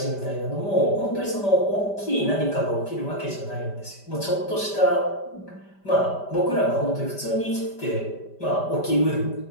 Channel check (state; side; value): late; right; 5.1 ms